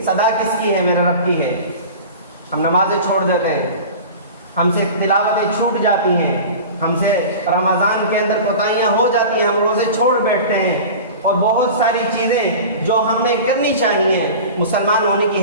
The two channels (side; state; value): both; inverted; correlation -0.35